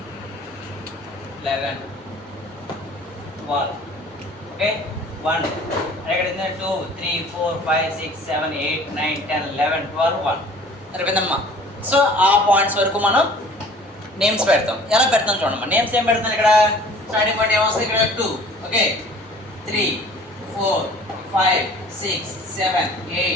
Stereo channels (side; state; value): both; normal; correlation 0.49